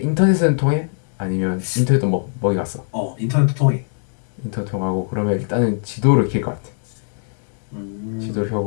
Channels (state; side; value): silent; right; digital silence